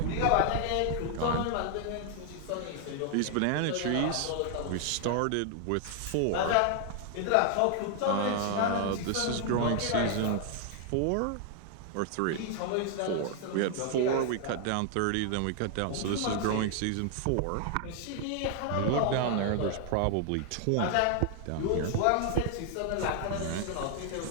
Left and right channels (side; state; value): both; different; correlation 0.00